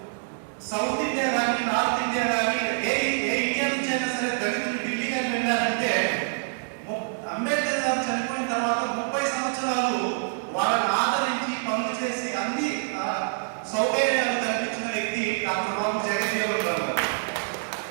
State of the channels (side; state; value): left; silent; digital silence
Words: సౌత్ ఇండియా కానీ నార్త్ ఇండియా కానీ ఏ ఇండియా నుంచి అయినా సరే దళితులు ఢిల్లీ కానీ వెళ్ళారంటే అంబేద్కర్ గారు చనిపోయిన తర్వాత 30 సంవత్సరాలు వాళ్ళని ఆదరించి పనులు చేసి అన్ని సౌకర్యాలు కల్పించిన వ్యక్తి డాక్టర్ బాబు జగజ్జీవన్ రావు గారు.